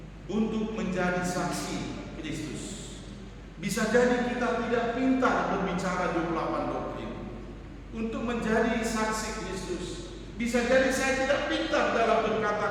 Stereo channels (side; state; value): both; identical; correlation 1.00